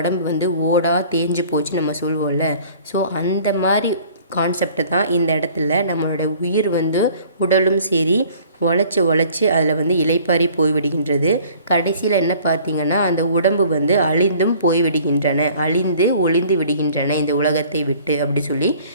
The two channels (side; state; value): both; inverted; correlation -0.52